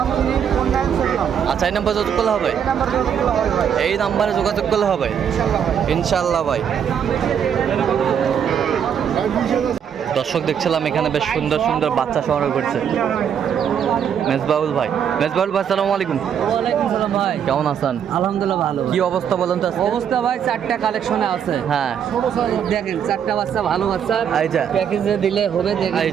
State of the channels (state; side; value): quieter; left; 8.3 dB